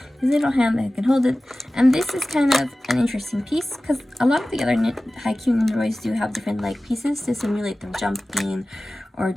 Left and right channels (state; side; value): normal; both; correlation 0.97